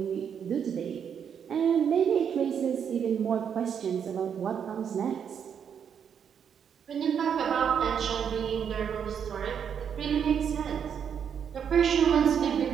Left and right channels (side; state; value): left; quieter; 7.8 dB